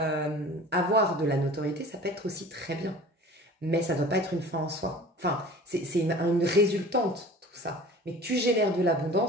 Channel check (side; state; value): both; normal; correlation 0.42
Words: avoir de la notoriété, ça peut être aussi très bien. Mais ça ne doit pas être une fin en soi. Enfin, c'est une résultante, tout ça. Mais tu génères de